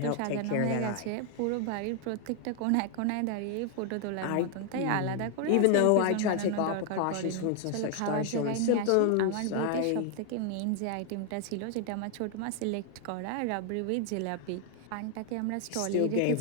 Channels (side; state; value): both; different; correlation 0.00